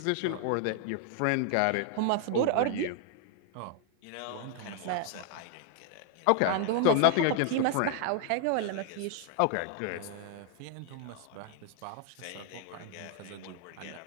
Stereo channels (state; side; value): different; both; correlation 0.00